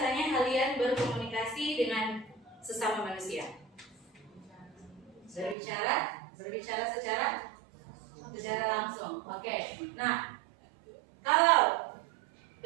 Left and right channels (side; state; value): left; drops out; at 5.6 s